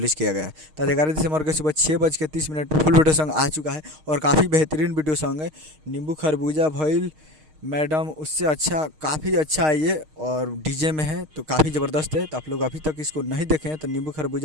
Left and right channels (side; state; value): left; late; 6.5 ms